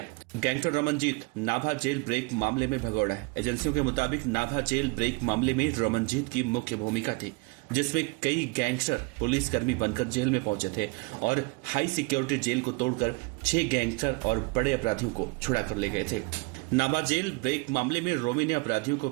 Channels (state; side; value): quieter; left; 27.6 dB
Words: Gangster Ramanjit Nabha jail break मामले में भगोड़ा है। एजेंसियों के मुताबिक नाभा जेल ब्रेक मामले में रमनजीत की मुख्य भूमिका थी, जिसमें कई गैंगस्टर पुलिसकर्मी बनकर जेल में पहुंचे थे और हाई सिक्योरिटी जेल को तोड़कर 6 गैंगस्टर और बड़े अपराधियों को छुड़ा कर ले गए थे। नाभा जेल ब्रेक मामले में रोमी ने अपराधियों को